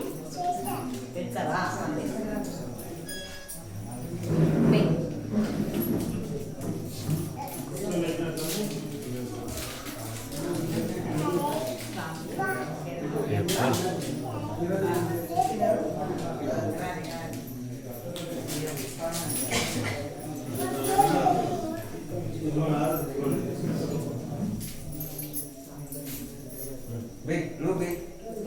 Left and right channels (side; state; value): both; identical; correlation 1.00